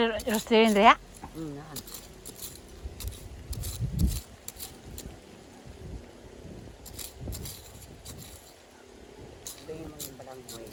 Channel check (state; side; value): identical; both; correlation 1.00